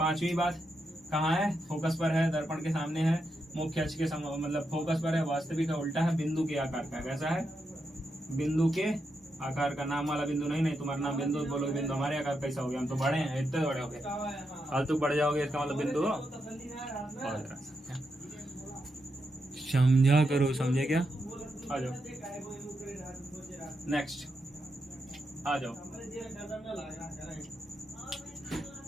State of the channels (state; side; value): normal; both; correlation 0.84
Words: बात, कहाँ है? फोकस पर है, दर्पण के सामने है, मुख्य अक्ष के मतलब फोकस पर है, वास्तविक है, उल्टा है, बिंदु के आकार का। कैसा है? बिंदु के आकार का। नाम वाला बिंदु नहीं, तुम्हारा नाम बिंदु बोलोगे, बिंदु हमारे आकार कैसा हो गया? हम तो बड़े हैं, इतने बड़े हो गए, फालतू बढ़ जाओगे, इसका मतलब बिंदु हो। समझा करो, समझे क्या? आ जाओ नेक्स्ट, आ जाओ।